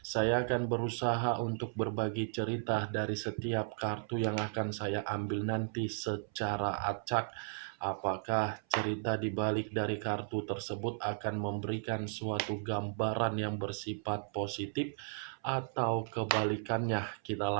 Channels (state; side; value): silent; left; 54 dB below the other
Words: saya akan berusaha untuk berbagi cerita dari setiap kartu yang akan saya ambil nanti secara acak. Apakah cerita di balik dari kartu tersebut akan memberikan suatu gambaran yang bersifat positif atau kebalikannya? Kita